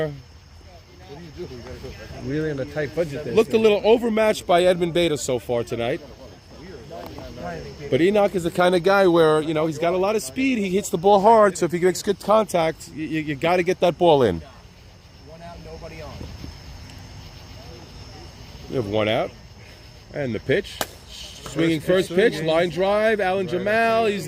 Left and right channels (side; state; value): both; identical; correlation 1.00